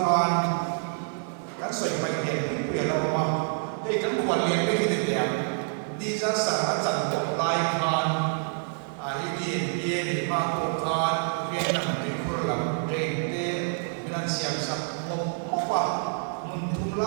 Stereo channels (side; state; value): left; silent; digital silence